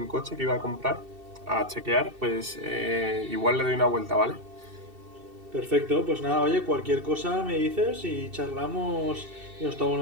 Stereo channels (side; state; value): left; late; 2.7 ms